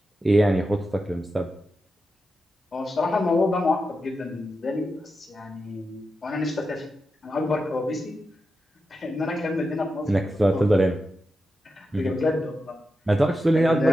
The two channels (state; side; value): normal; both; correlation 0.89